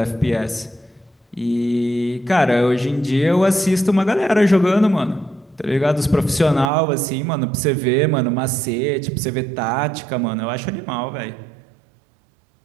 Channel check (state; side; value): drops out; left; at 6.7 s